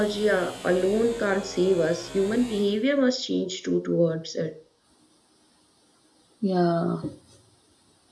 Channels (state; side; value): identical; both; correlation 1.00